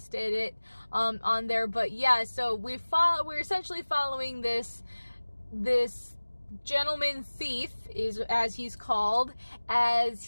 it on there. But yeah, so we're essentially following this gentleman thief, is as he's called,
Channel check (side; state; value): both; inverted; correlation -1.00